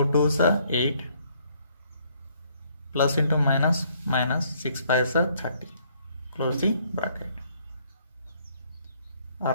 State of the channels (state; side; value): inverted; both; correlation -0.66